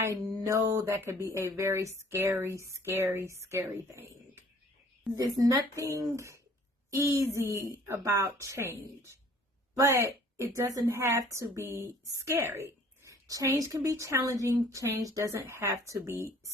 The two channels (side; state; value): both; normal; correlation 0.55